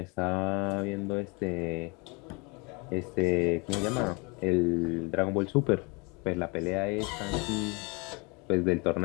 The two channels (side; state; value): right; quieter; 29.6 dB